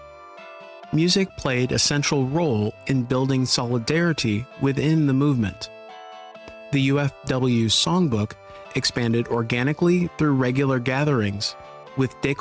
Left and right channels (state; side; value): identical; both; correlation 1.00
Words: Music played a central role in building solidarity within the movement. The UFW songbook expanded organically through regular gatherings, with De